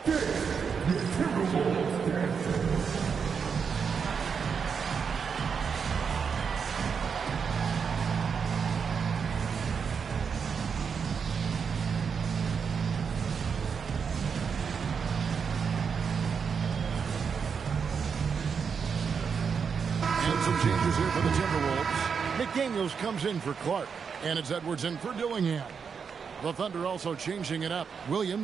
Changes here for the Timberwolves. McDaniels comes in for Clark. And it's Edwards in for Dillingham. The Thunder also changing it up.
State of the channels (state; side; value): quieter; left; 6.2 dB